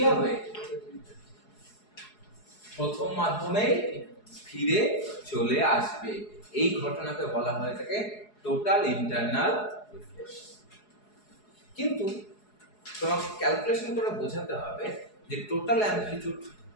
হবে, প্রথম মাধ্যমে ফিরে চলে আসবে। এই ঘটনাকে বলা হয় থাকে টোটাল ইন্টারনাল রিফ্লেকশন। কিন্তু তোমাকে ক্যালকুলেশন করে বোঝাতে হবে যে টোটাল অ্যামপ্লিটিউড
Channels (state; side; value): late; right; 4.8 ms